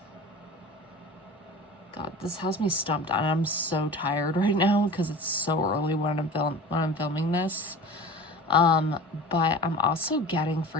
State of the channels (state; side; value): normal; both; correlation 0.36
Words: this has me stumped, and I'm so tired right now because it's so early when I'm filming this. But I'm also getting